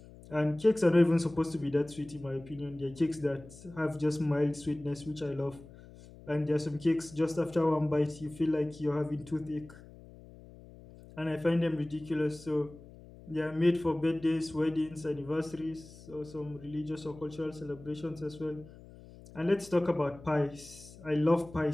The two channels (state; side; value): noise; left; hum, 19 dB below the sound